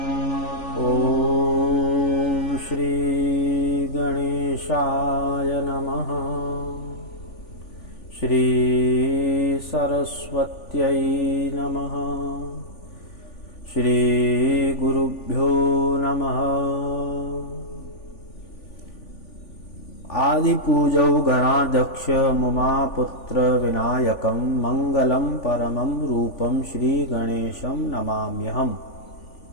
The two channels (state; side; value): late; right; 3.5 ms